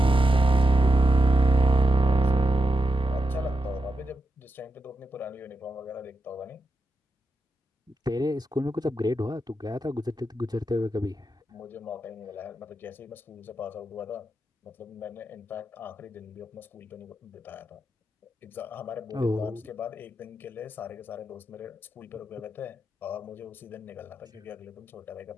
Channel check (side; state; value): both; normal; correlation 0.87